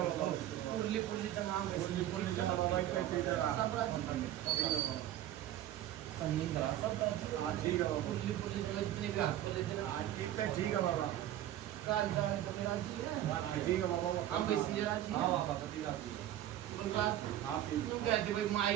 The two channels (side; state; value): left; quieter; 12.7 dB